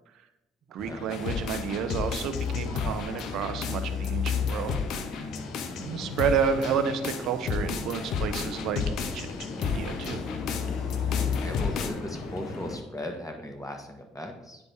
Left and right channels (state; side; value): normal; both; correlation 0.52